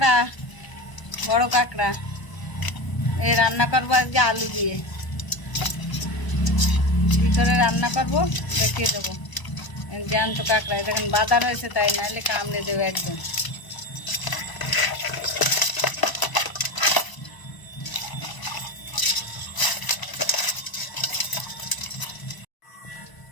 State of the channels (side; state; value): right; late; 1.0 ms